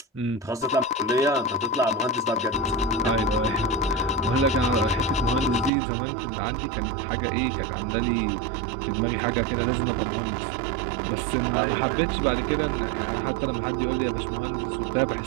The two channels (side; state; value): left; drops out; at 5.7 s